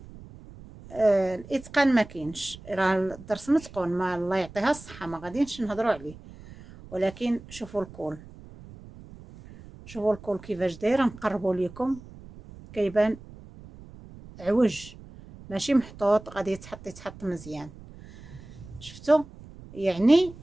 الاتقان ما كاينش. راه الدرس متقون، ما الله يعطيها الصحه ما غاديش نهضروا عليه. ولكن شوفوا الكول، شوفوا الكول كيفاش داير. نقربوا لكم كيبان عوج ماشي محطوط، غادي يتحط مزيان. شفتوا؟ يعني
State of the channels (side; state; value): right; noise; rumble, 18 dB below the sound